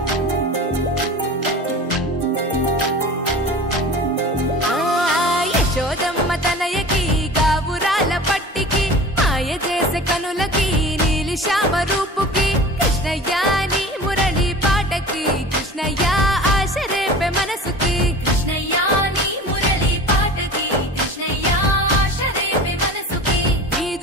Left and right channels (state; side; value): normal; both; correlation 0.38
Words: తనయకి గావురాల పట్టికి మాయ చేసే కనులకి నీలి శ్యామ రూపుకి కృష్ణయ్య నీ మురళి పాటకి కృష్ణయ్య ఆశ రేపే మనసుకి కృష్ణయ్య నీ మురళి పాటకి కృష్ణయ్య ఆశ రేపే మనసుకి